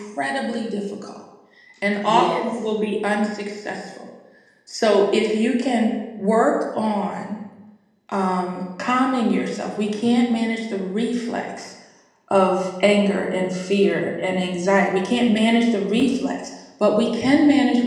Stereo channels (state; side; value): identical; both; correlation 1.00